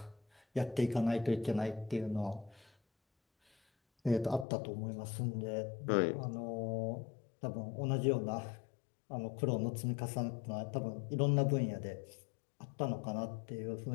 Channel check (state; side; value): drops out; right; at 4.5 s